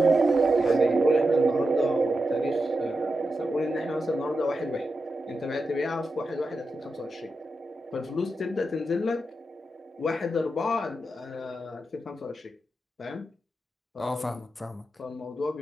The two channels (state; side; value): normal; both; correlation 0.89